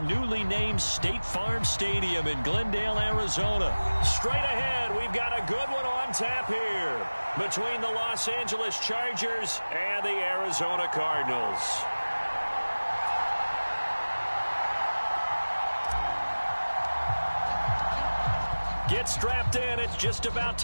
newly named State Farm Stadium in Glendale, Arizona. Straight ahead, we've got a good one on tap here between the Los Angeles Chargers and the Arizona Cardinals. Get strapped in. It's just about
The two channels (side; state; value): both; inverted; correlation -1.00